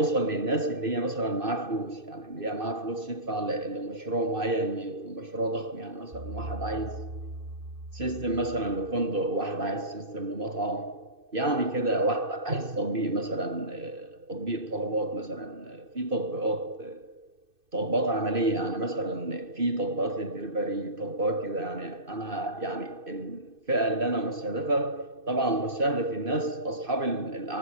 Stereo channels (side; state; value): left; late; 2.6 ms